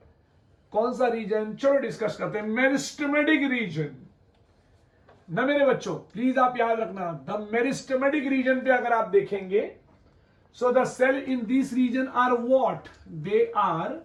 कौन सा रीजन, चलो डिस्कस करते हैं, मेरिस्टेमेटिक रीजन ना मेरे बच्चों, प्लीज आप याद रखना, द मेरिस्टेमेटिक रीजन पे अगर आप देखेंगे, so the cell in this region are what, they are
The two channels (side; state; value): both; identical; correlation 1.00